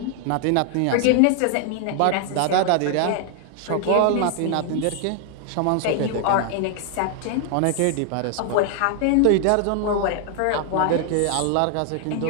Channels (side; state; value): both; different; correlation 0.00